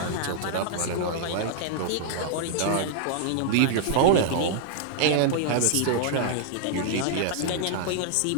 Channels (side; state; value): both; different; correlation -0.01